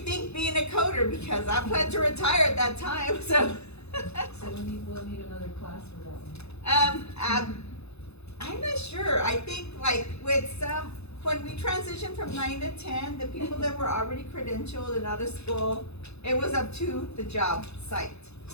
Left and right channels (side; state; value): right; late; 0.80 ms